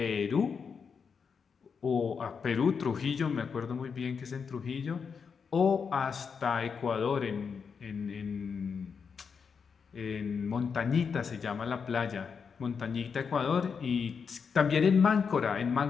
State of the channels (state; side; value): quieter; right; 6.1 dB